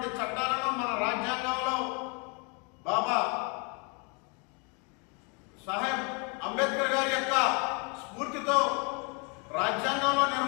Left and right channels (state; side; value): quieter; right; 33.7 dB